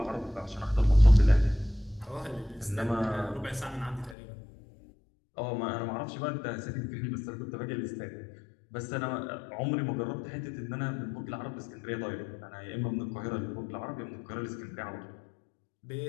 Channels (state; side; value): drops out; right; at 4.2 s